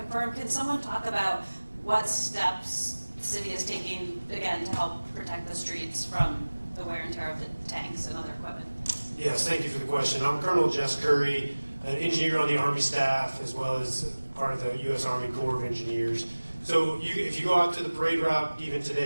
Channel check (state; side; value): inverted; both; correlation -1.00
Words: Can someone talk about what steps the city is taking, again, to help protect the streets from the wear and tear of the tanks and other equipment? Yes, thank you for the question. I'm Colonel Jess Curry, an engineer on the Army staff, as well as part of the U.S. Army Corps of Engineers. So if you go out to the parade route even